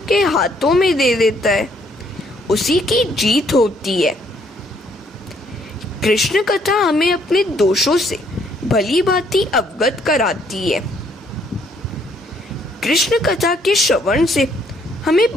के हाथों में दे देता है उसी की जीत होती है। कृष्ण कथा हमें अपने दोषों से भली भांति अवगत कराती है। कृष्ण कथा के श्रवण से हमें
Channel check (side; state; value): both; normal; correlation 0.67